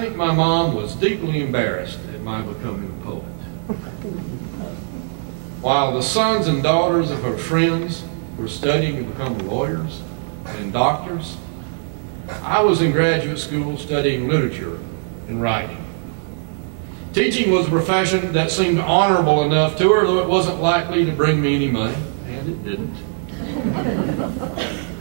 my mom was deeply embarrassed at my becoming a poet. While the sons and daughters of her friends were studying to become lawyers and doctors, I was in graduate school studying literature and writing. Teaching was a profession that seemed honorable enough to her, though it wasn't likely to bring me any money, and it didn't.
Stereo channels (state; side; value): silent; left; 65 dB below the other